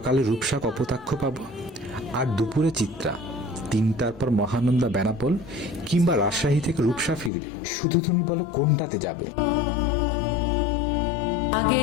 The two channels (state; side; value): drops out; right; at 7.3 s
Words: রূপসা কপোতাক্ষ পাবো, আর দুপুরে চিত্রা, তিনটার পর মহানন্দা বেনাপোল, কিংবা রাজশাহী থেকে রূপসা ফিরবে। শুধু তুমি বলো কোনটাতে যাবে।